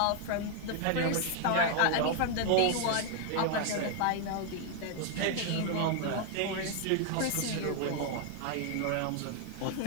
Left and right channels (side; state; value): both; different; correlation 0.00